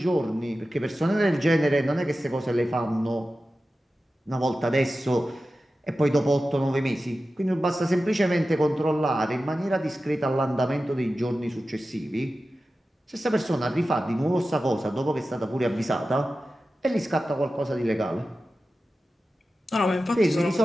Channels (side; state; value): both; normal; correlation 0.94